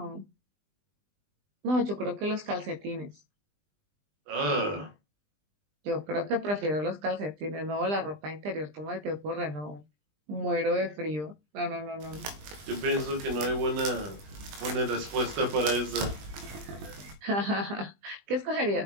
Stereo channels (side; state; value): left; late; 20 ms